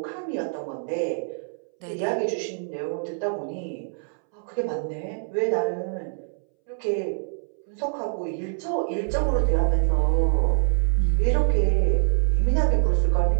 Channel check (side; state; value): left; silent; 62 dB below the other